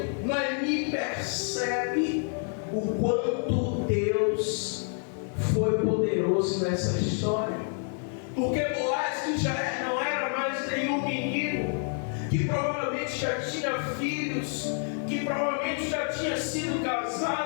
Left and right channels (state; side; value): silent; right; 55 dB below the other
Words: Noemi percebe o quanto Deus foi poderoso nessa história. Porque Boaz, que já não era mais nenhum menino, que provavelmente já tinha filhos, que provavelmente já tinha sido